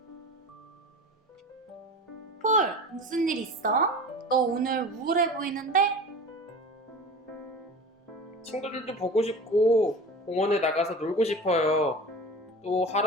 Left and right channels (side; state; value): both; normal; correlation 0.35